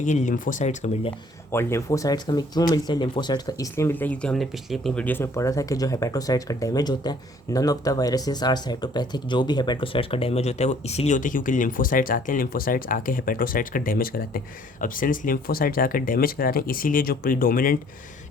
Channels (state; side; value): normal; both; correlation 0.59